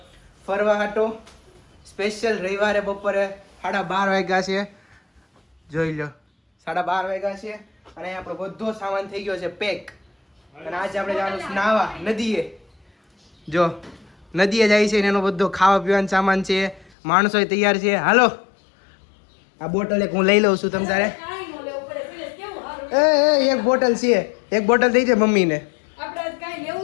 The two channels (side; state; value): right; drops out; at 16.9 s